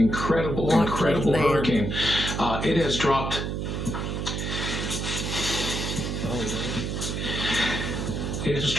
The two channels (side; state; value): right; noise; hum, 2 dB below the sound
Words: It has dropped... It has